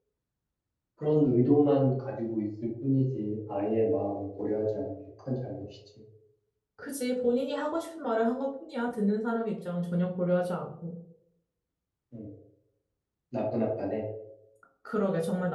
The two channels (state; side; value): identical; both; correlation 1.00